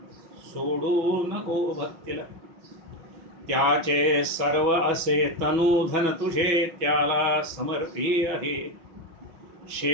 सोडू नको भक्तीला. त्याचे सर्व असे तनु धन तुझे, त्याला समर्पी आहे.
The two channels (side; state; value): left; late; 6.1 ms